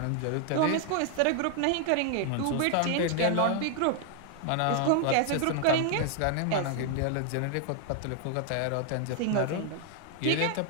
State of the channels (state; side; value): different; both; correlation 0.00